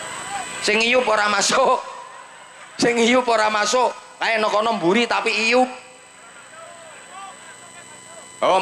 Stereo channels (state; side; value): identical; both; correlation 1.00